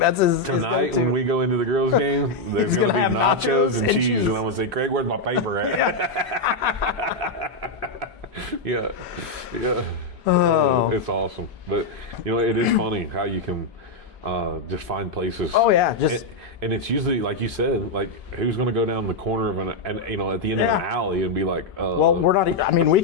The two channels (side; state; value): right; quieter; 3.0 dB